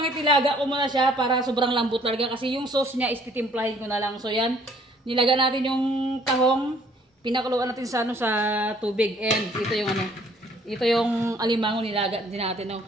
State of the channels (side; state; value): both; normal; correlation 0.60